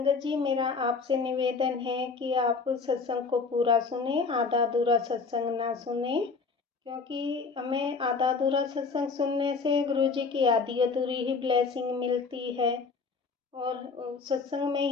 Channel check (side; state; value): right; quieter; 4.7 dB